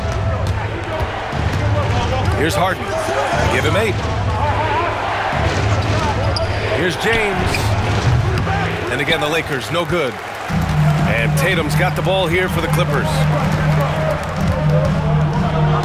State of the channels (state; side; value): identical; both; correlation 1.00